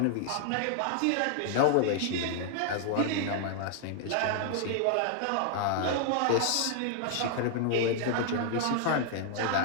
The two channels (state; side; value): different; both; correlation -0.01